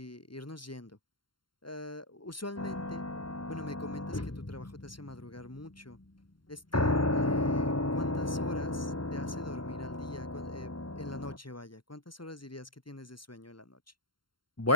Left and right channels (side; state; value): right; late; 0.72 ms